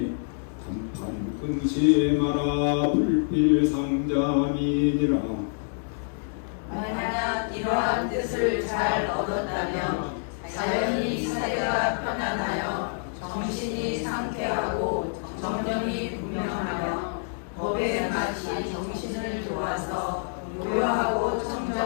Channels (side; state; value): right; silent; digital silence